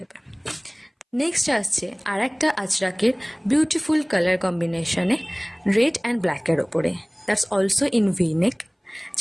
নেক্সট আসছে আর একটা আজরাকের বিউটিফুল কালার কম্বিনেশনে রেড অ্যান্ড ব্ল্যাকের ওপরে, দ্যাটস অলসো ইন ভিনেক,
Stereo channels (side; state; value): both; identical; correlation 1.00